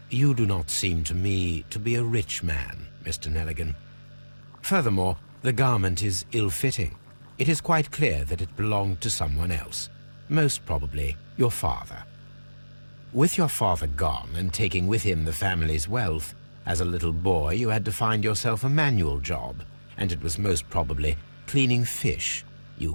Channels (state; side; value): inverted; both; correlation -1.00